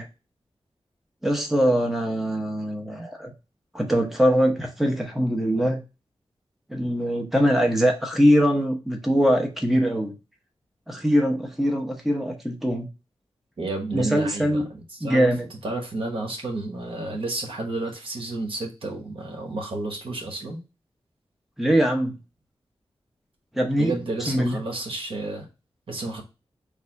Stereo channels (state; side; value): normal; both; correlation 0.90